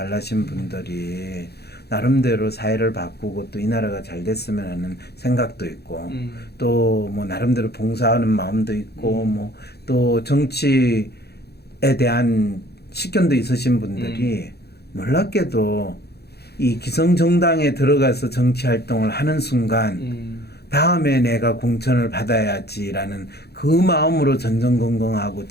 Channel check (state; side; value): late; right; 0.47 ms